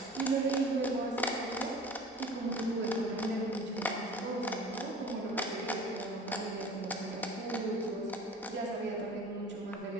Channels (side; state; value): both; normal; correlation 0.42